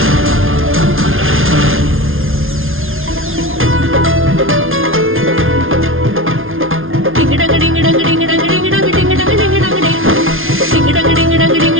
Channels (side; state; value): left; late; 0.60 ms